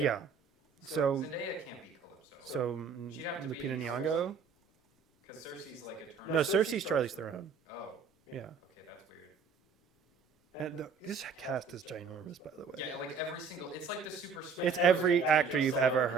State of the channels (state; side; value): quieter; left; 5.4 dB